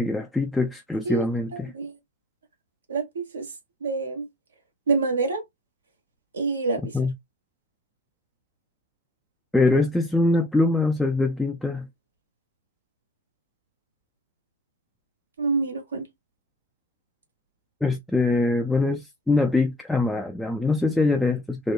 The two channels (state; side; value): normal; both; correlation 0.55